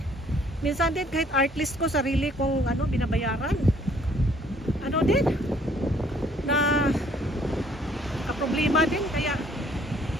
Minsan din kahit artist ko, sarili kong binabayaran. Din na problema din, kaya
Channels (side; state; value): both; normal; correlation 0.62